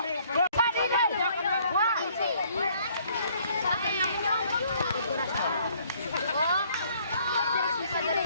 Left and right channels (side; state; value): both; inverted; correlation -0.63